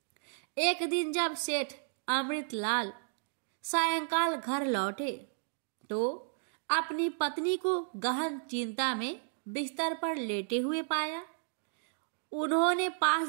एक दिन जब सेठ अमृतलाल सायंकाल घर लौटे तो अपनी पत्नी को गहन चिंता में बिस्तर पर लेटे हुए पाया। उन्होंने पास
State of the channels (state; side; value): silent; left; digital silence